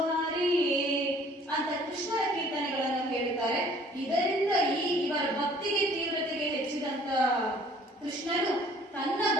ಹರಿಯೇ ಅಂತ ಕೃಷ್ಣನ ಕೀರ್ತನೆಗಳನ್ನು ಹೇಳುತ್ತಾರೆ. ಇದರಿಂದ ಇವರ ಭಕ್ತಿಗೆ ತೀವ್ರತೆಗೆ ಹೆಚ್ಚಿದಂತ ಕೃಷ್ಣನು ತನ್ನ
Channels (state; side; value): normal; both; correlation 0.55